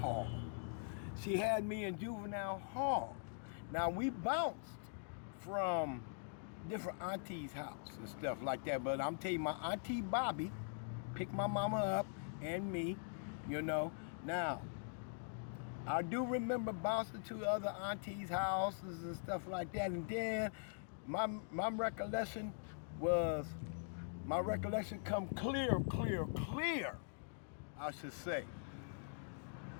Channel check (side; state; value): right; silent; digital silence